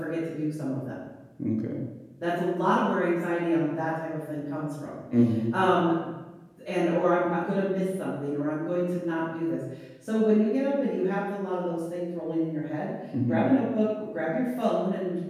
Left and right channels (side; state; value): both; identical; correlation 1.00